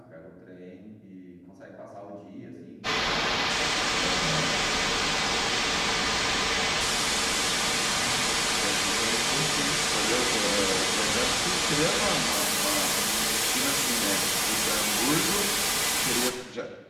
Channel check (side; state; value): both; identical; correlation 1.00